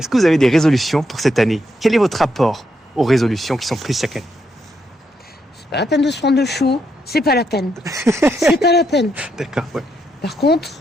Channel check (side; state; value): both; normal; correlation 0.79